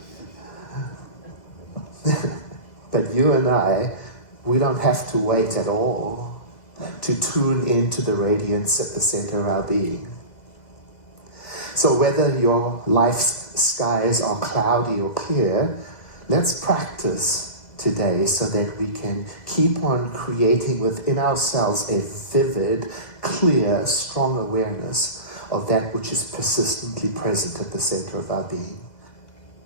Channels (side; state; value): right; late; 2.0 ms